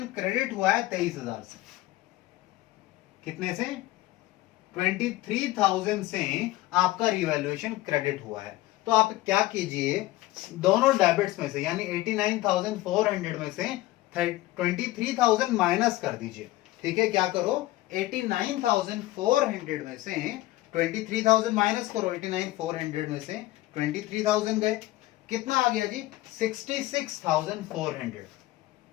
क्रेडिट हुआ है 23,000 से। कितने से? 23,000 से आपका रिवैल्यूएशन क्रेडिट हुआ है। तो आप क्या कीजिए, दोनों डेबिट्स में से यानी 89,400 में से 23,000 माइनस कर दीजिए, ठीक है। क्या करो? 89,400 में से 23,000 माइनस करो। 89,400 में से 23,000 गए, कितना आ गया जी? 66,400।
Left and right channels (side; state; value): right; quieter; 17.3 dB